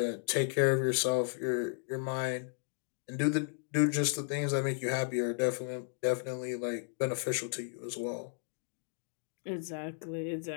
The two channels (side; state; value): right; silent; digital silence